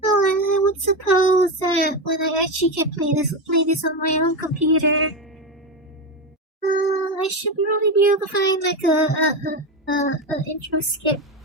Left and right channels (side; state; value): both; normal; correlation 0.15